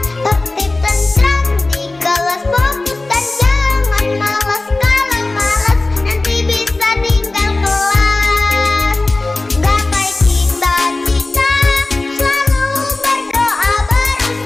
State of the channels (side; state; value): right; quieter; 3.1 dB